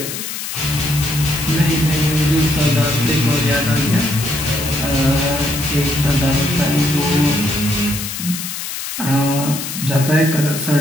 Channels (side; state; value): left; noise; hiss, 6 dB below the sound